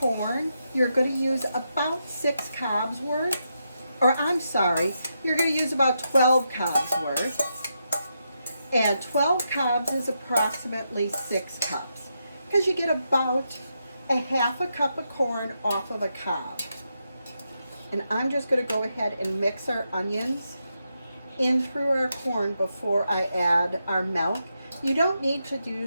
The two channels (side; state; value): both; inverted; correlation -0.84